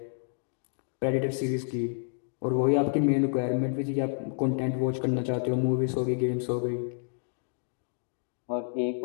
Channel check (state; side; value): silent; right; digital silence